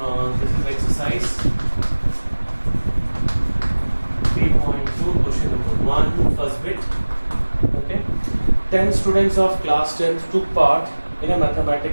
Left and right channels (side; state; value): both; inverted; correlation -1.00